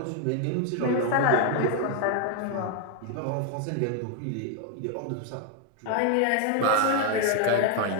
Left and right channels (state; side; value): different; both; correlation 0.01